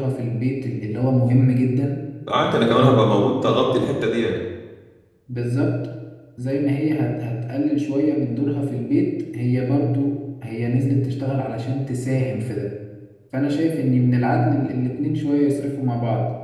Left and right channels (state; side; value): identical; both; correlation 1.00